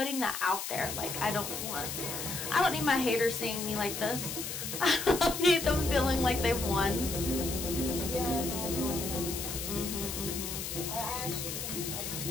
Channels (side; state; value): left; noise; hiss, 5 dB below the sound